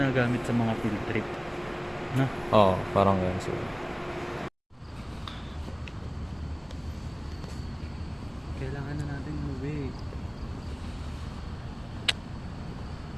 sa mga field trip. No? Oo, parang yan siguro. Kailangan na natin umuwi.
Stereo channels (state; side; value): identical; both; correlation 1.00